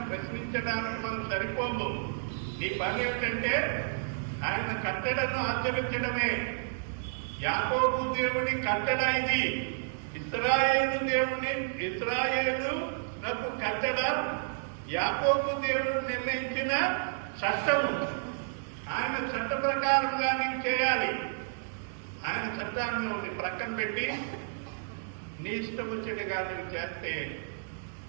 మనం సరిపోము. నీ పని ఏమిటంటే ఆయన కట్టడను ఆచరించడమే. యాకోబు దేవుని కట్టడ ఇది. ఇశ్రాయేలు నాకు కట్టడ యాకోబు దేవుడు నిర్ణయించిన చట్టము. ఆయన చట్ట ప్రకారంగా నీవు చేయాలి. ఆయన చట్టాన్ని ప్రక్కన పెట్టి నీ ఇష్టం వచ్చేట్టుగా నువ్వు చేస్తే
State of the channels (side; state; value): left; silent; digital silence